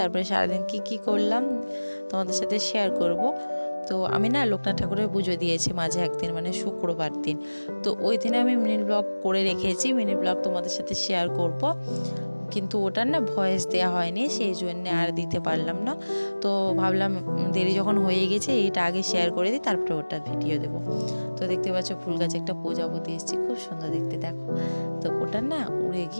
সারাদিন কি করলাম তোমাদের সাথে শেয়ার করব। তো আমি না লোকনাথ ঠাকুরের পুজো দিয়েছি মাঝে একদিন, মানে শুক্রবার দিন। তো ওই দিনে আমি মিনি ব্লগ করে রেখেছি, মিনি ব্লগ তোমাদের সাথে শেয়ার করব, কিন্তু ওটার না ভয়েস দেওয়া হয়নি, সেই জন্যে আর দিতে পারলাম না। তো ভাবলাম দেরি যখন হয়ে গেছে এইটা আগে শেয়ার করে দিই, তারপরে ওটা ভিডিও দেবো। তো দেখতে পাচ্ছ ফুল গাছে একটা প্রজাপতি এসেছে, খুব সুন্দর দেখতে, দেখো। তো ওটা না উড়ে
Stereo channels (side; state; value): both; inverted; correlation -1.00